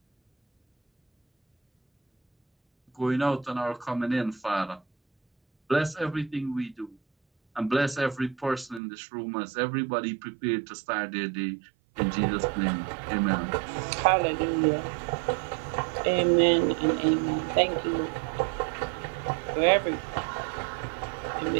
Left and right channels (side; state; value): left; drops out; at 8.8 s